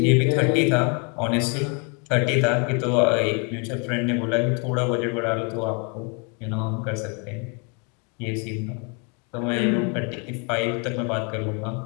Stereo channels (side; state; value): right; quieter; 34.5 dB